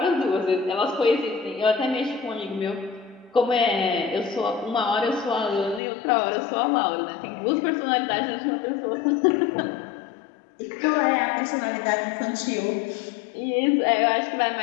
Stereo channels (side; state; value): right; drops out; at 5.8 s